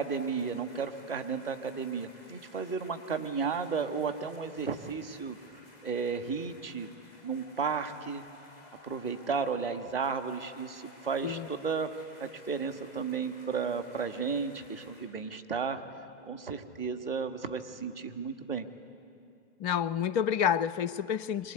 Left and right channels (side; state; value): right; late; 2.0 ms